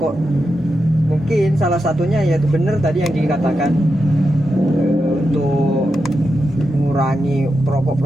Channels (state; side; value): normal; both; correlation 0.88